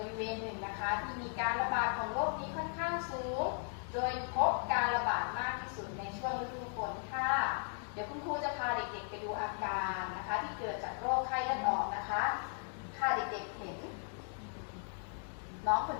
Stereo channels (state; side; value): silent; right; 53 dB below the other